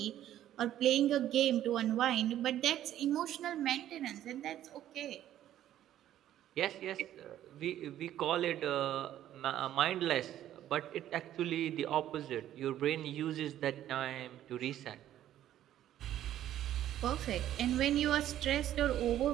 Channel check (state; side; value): quieter; left; 12.1 dB